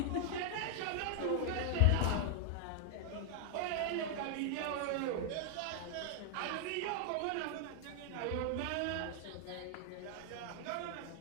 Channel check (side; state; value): both; different; correlation 0.00